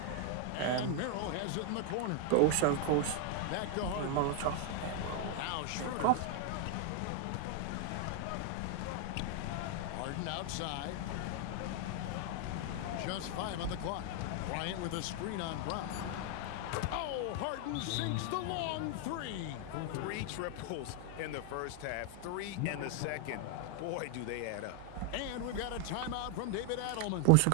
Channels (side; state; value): both; different; correlation 0.00